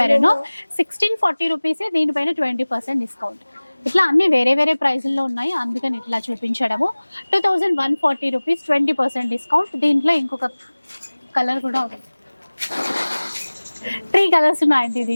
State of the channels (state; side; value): inverted; both; correlation -1.00